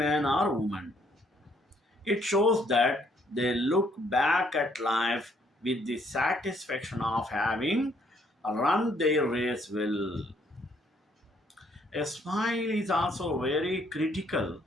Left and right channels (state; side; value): normal; both; correlation 0.67